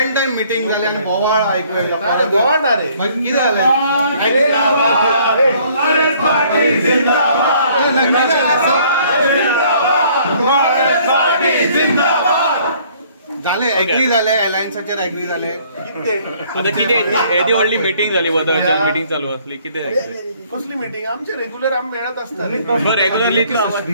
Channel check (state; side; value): inverted; both; correlation -0.60